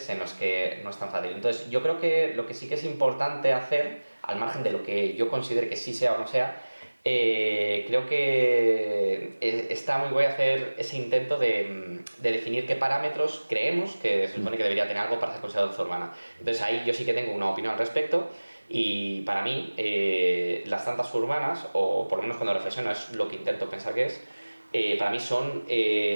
en los que no es tan fácil. Entonces, yo creo que lo que sí que es importante hacer, al margen de lo que yo considere que sí sea o no sea, creo que está muy guay hacer ese intento de definir qué parámetros creemos que se supone que debería tener algo para ser considerado danza urbana. Entonces, ahí yo sí que tengo una opinión al respecto. Y para mí, las danzas urbanas, o por lo menos cuando reflexiono es lo que intento pensar que es, para mí son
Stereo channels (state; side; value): inverted; both; correlation -1.00